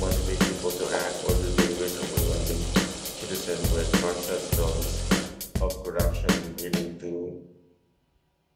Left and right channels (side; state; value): both; identical; correlation 1.00